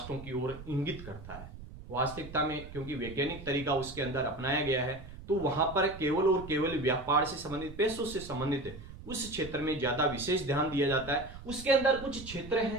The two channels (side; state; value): right; noise; rumble, 14 dB below the sound